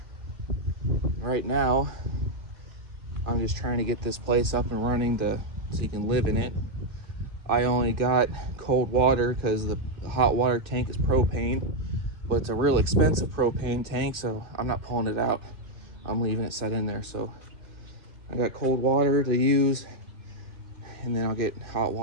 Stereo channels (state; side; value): late; left; 2.6 ms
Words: Right now, I'm just trying to get this place up and running so you can live in it. I only got cold water because the hot water tank is propane, but it's a real expensive propane tank, so I'm not pulling it out. I'm leaving it set in there. So I got cold water to use, and then I'll get hot